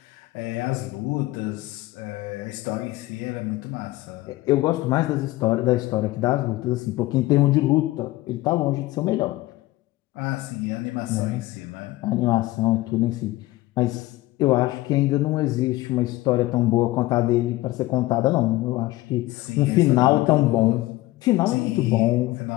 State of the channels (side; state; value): right; quieter; 18.2 dB